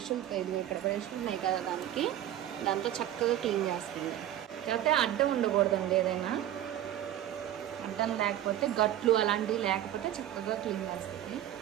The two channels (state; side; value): quieter; left; 12.1 dB